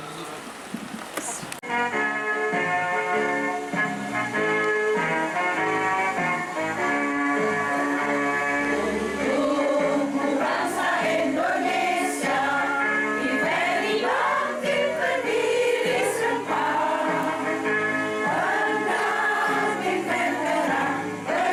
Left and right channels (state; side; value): identical; both; correlation 1.00